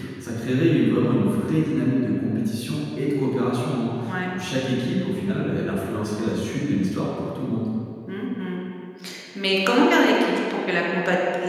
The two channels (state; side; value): identical; both; correlation 1.00